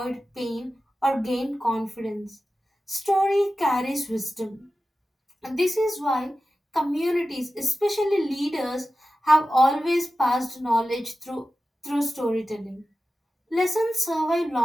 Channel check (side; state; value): both; normal; correlation 0.94